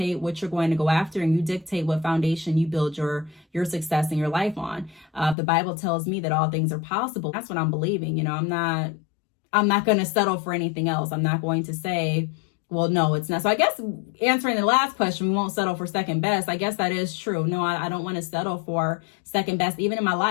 what you're going to go after, and you dictate what foundation you build your success in your life on. The Bible tells me that all things are possible. That's what I'm believing. I'm not going to settle for anything else. I'm not going to say, well, no, it's not. So I guess answering the last question, we won't settle for second best. I guess that is true. No, I don't want to settle for second best, even in my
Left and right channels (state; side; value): drops out; right; at 5.4 s